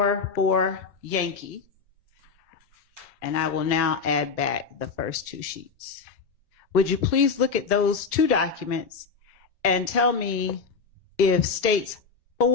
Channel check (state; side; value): quieter; right; 5.2 dB